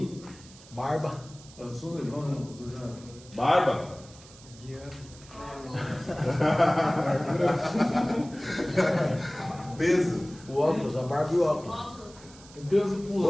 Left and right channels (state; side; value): noise; right; hiss, 21 dB below the sound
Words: Barba. Eu sou legal, né? Você já... Barba? Peso? O óculos, a barba e o óculos. O peso